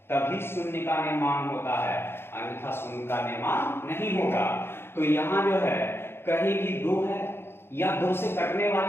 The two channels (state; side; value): late; right; 0.11 ms